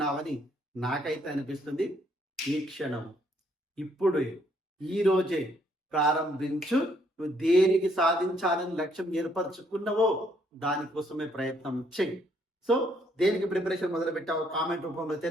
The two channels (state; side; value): normal; both; correlation 0.69